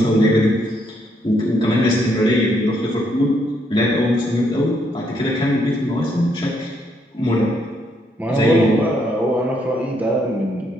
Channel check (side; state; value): both; normal; correlation 0.73